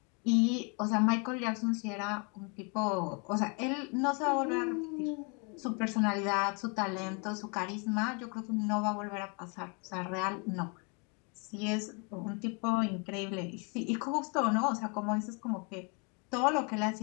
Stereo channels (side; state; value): right; quieter; 34.1 dB